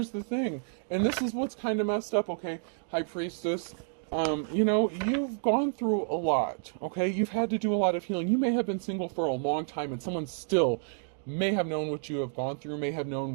the thing. And this is what's kind of messed up, okay? High Priestess. You've gone through a lot, okay? You've had to do a lot of healing. You may have been single for a long time and someone still may have known what you have gone through, may have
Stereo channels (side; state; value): left; silent; digital silence